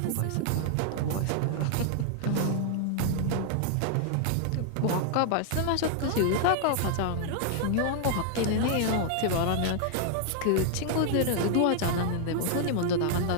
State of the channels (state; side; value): different; both; correlation 0.00